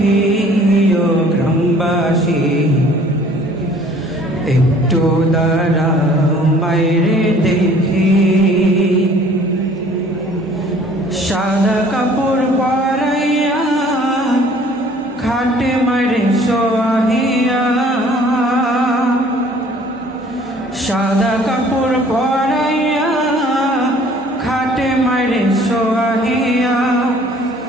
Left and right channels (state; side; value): normal; both; correlation 0.54